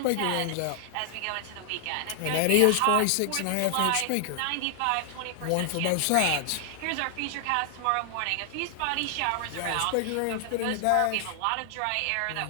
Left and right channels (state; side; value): different; both; correlation 0.00